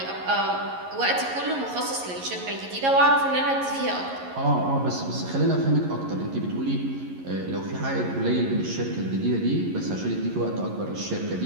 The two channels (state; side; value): late; left; 11 ms